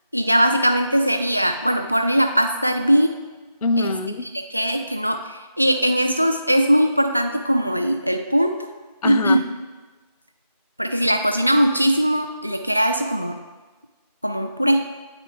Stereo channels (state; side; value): inverted; both; correlation -0.90